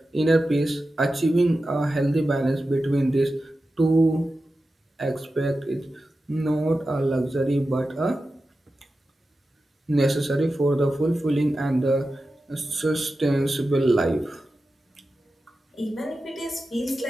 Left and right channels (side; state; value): both; normal; correlation 0.93